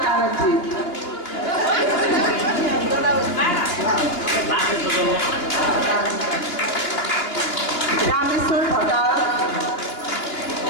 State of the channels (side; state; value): right; late; 2.8 ms